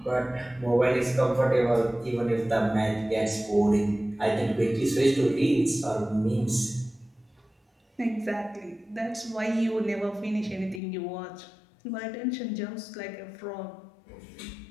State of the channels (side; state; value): right; drops out; at 10.8 s